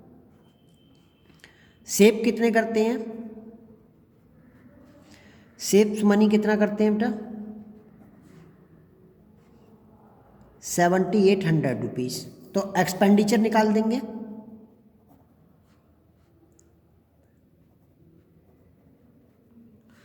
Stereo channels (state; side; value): identical; both; correlation 1.00